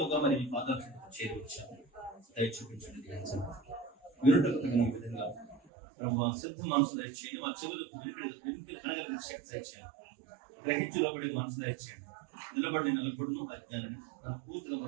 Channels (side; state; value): left; drops out; at 5.6 s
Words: మరి మీ పాదాలకు చేరవచ్చాము. దయ చూపించండి. వినుటకు తగిన విధంగా ప్రభు సిద్ధ మనసు దయచేయండి. మా చెవులకు వినికిడి అనగలిగిన శక్తి దయచేయండి. గ్రహించు లోబడి మనసు దయచేయండి. నిలబడి నిలబడును అజ్ఞానాన్ని పూర్తిగా